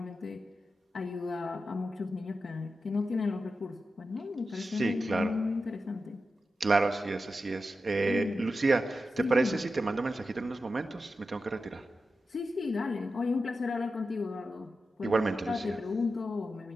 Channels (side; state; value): both; normal; correlation 0.91